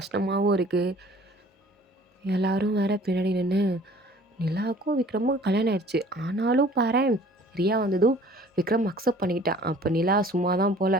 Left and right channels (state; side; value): normal; both; correlation 0.51